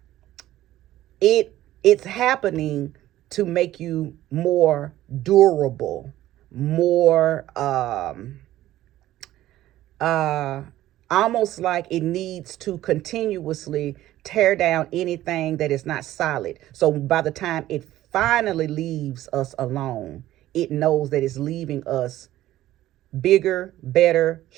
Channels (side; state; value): left; quieter; 14.4 dB